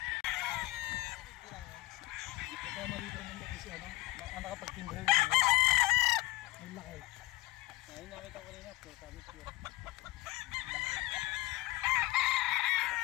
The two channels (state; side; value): quieter; right; 19.9 dB